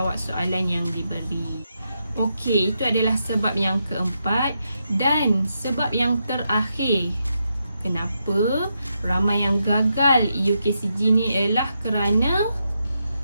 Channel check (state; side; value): inverted; both; correlation -0.83